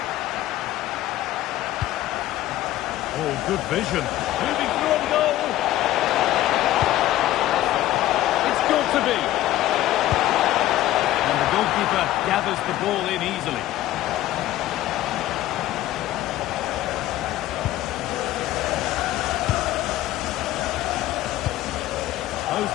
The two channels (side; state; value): right; quieter; 14.5 dB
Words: Oh, good vision. Moving through on goal. It's got to be. And the goalkeeper gathers the ball in easily.